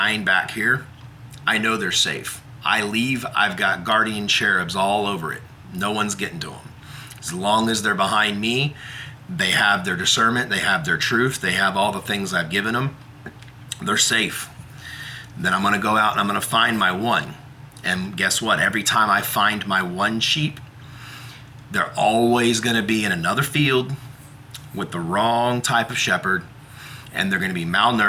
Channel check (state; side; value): identical; both; correlation 1.00